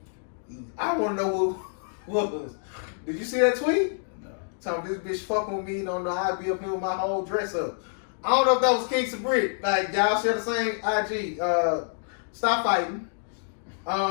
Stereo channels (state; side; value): silent; right; digital silence